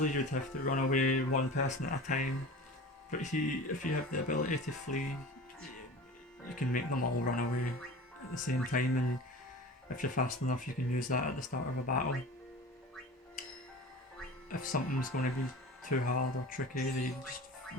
you'd have to run away one person at a time, but if you have the ability to flee, you can make them all run away at the same time, and if you're fast enough you can use that at the start of a battle. If something's going to be too hard or tricky, you just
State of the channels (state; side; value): normal; both; correlation 0.36